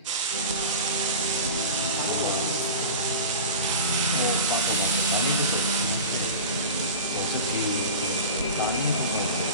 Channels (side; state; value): both; inverted; correlation -0.31